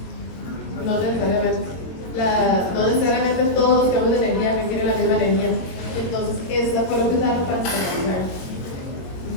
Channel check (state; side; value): late; right; 22 ms